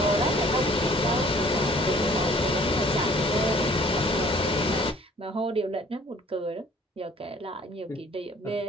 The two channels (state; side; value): normal; both; correlation 0.56